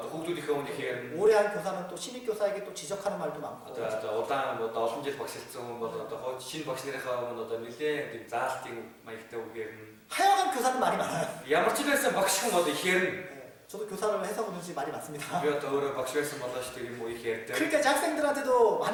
хүүхдүүдийнхээ өмнөх ярьна. 오래 한 교사는 또 신입 교사에게 또 지적하는 말도 많고 Одоо удаан одоо олон жил багшилсан хүн бол одоо хойд шинэ багш нарынхаа өмнө одоо нэлээд тийм заалтын маягтай үг ярьна. 하여간 교사는 말이 많아요. Ямар ч байсан багш хүн одоо их ярьна. 네, 저도 교사를 해서 그런지 말이 많습니다. Би одоо өөрөө багш байсан болооч тийм үү их ярьдаг. 그러니까 이제 학생들한테도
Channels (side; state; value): both; identical; correlation 1.00